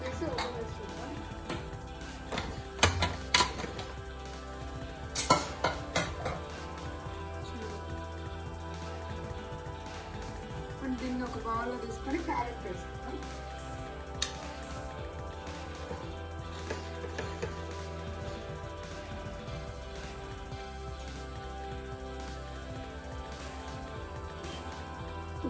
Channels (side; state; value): both; identical; correlation 1.00